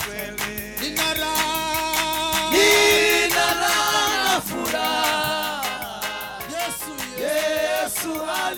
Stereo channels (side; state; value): both; identical; correlation 1.00